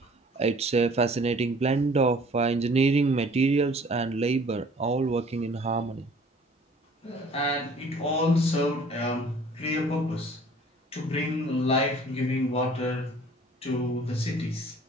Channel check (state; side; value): normal; both; correlation 0.52